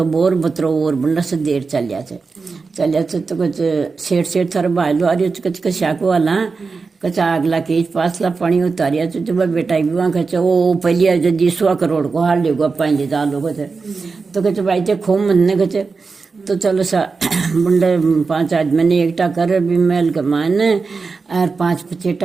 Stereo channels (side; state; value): left; quieter; 4.5 dB